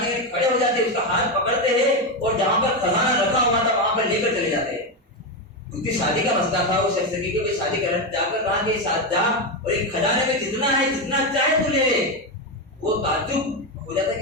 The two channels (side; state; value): both; normal; correlation 0.10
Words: غنی کھڑے ہو جاتے، اس کا ہاتھ پکڑتے ہیں اور جہاں پر خزانہ رکھا ہوا تھا وہاں پر لے کر چلے جاتے ہیں. اس کی شادی کا مسئلہ تھا، وہ شخص کی کہ شادی کر جا کر کہا کہ ساتھ جا اور ایک خزانے میں جتنا ہے جتنا چاہے تو لے لے. وہ تعجب ہو جاتا